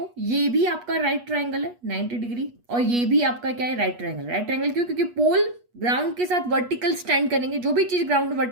ये भी आपका राइट ट्रायंगल है 90 डिग्री, और ये भी आपका क्या है, राइट ट्रायंगल। राइट ट्रायंगल क्यों, क्योंकि पोल ग्राउंड के साथ वर्टिकल स्टैंड करेंगे, जो भी चीज ग्राउंड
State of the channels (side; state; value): left; late; 8.3 ms